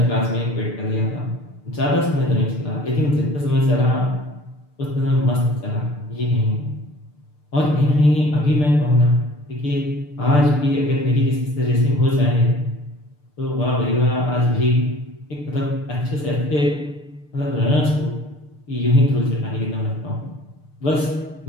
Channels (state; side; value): late; right; 6.7 ms